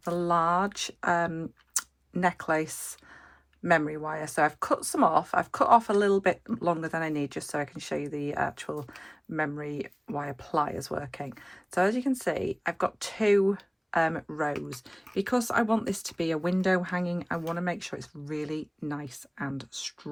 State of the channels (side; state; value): both; identical; correlation 1.00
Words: the large necklace memory wire. So I've cut some off. I've cut off a little bit longer than I need just so I can show you the actual memory wire pliers working. So as you can see, I've got two rows. Because I want this to be a window hanging, I want to make sure it's really nice and